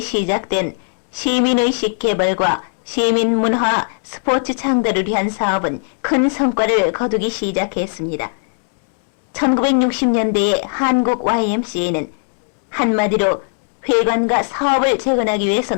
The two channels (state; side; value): silent; right; 67 dB below the other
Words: 시작된 시민의식 개발과 시민문화, 스포츠 창달을 위한 사업은 큰 성과를 거두기 시작했습니다. 1960년대의 한국 YMCA는 한마디로 회관과 사업을 재건하기 위해서